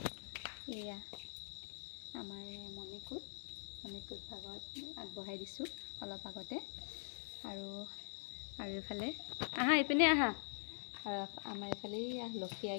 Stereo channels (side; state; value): right; silent; digital silence